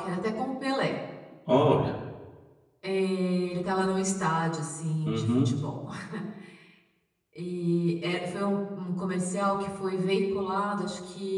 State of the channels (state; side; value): identical; both; correlation 1.00